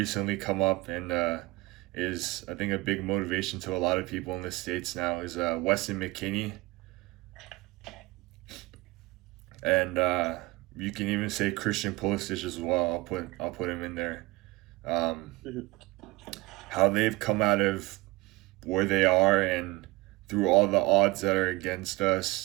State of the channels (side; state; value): left; quieter; 21.4 dB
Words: come up, and is, I think, a big motivation to a lot of people in the States now, is Weston McKennie. And you can even say Christian Pulisic as well. I'll put him in there. Mhm. how they've come out of where they are, and through all the odds that are against